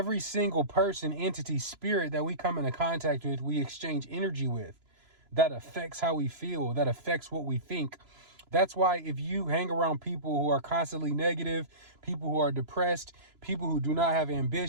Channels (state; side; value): late; left; 3.0 ms